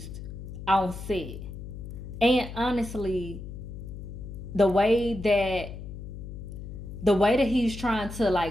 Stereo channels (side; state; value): left; noise; hum, 10 dB below the sound